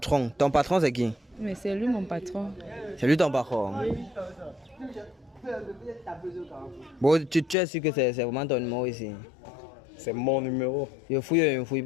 Ton patron, c'est qui? Mais c'est lui mon patron. C'est lui ton patron. Bon, tu es sûr que c'est vraiment ton numéro ici? C'est mon numéro. Je fouille ou je ne fouille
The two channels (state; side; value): drops out; right; at 7.6 s